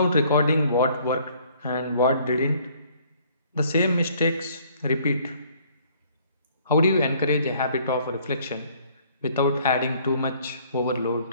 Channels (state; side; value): inverted; both; correlation -0.60